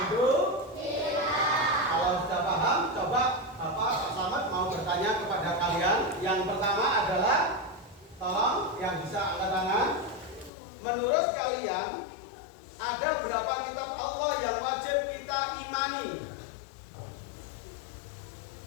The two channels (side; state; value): right; drops out; at 10.5 s